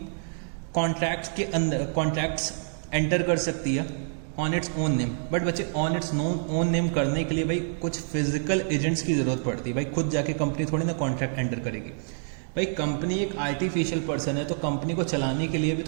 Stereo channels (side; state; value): left; silent; 60 dB below the other